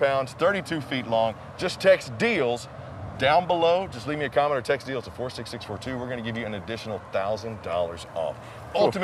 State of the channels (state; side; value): identical; both; correlation 1.00